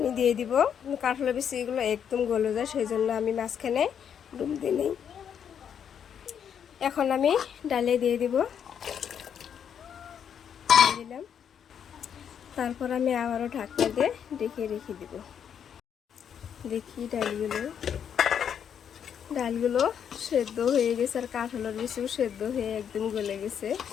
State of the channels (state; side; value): quieter; right; 8.2 dB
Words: দিয়ে দিব। কাঁঠালের বিচিগুলো একদম গলে যায়, সেই জন্য আমি মাঝখানে ডুম দিয়ে নেই। এখন আমি ডালে দিয়ে দিব, দিলাম। তারপর আমি আবারও ঢাকনা দিয়ে ঢেকে রেখে দিব। দেখি ডালগুলো সেদ্ধ হয়ে গেছে আর কাঁঠালের বিচিও সেদ্ধ হয়ে একদম গলে গেছে।